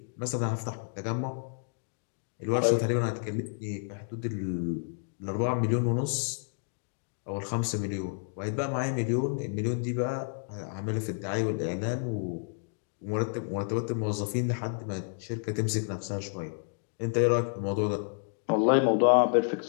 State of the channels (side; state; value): right; silent; digital silence